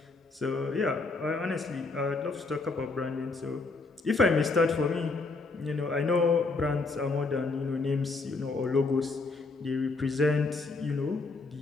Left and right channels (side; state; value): right; quieter; 3.8 dB